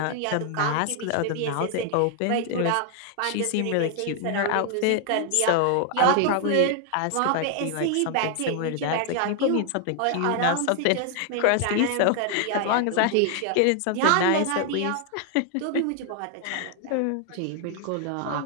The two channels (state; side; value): different; both; correlation 0.00